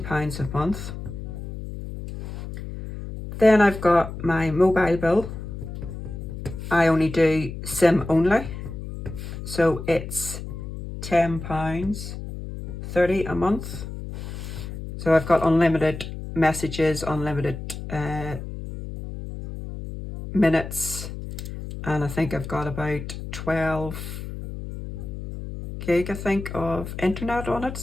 a month. Then I've got my mobile bill. I only do SIM only. So it's £10.30 a month. So I've got unlimited messages, unlimited minutes, and I think I've got about 12 gig, I think, of internet on it.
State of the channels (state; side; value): noise; left; hum, 9 dB below the sound